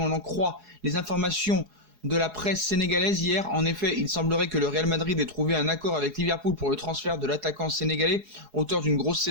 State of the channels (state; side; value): late; left; 4.7 ms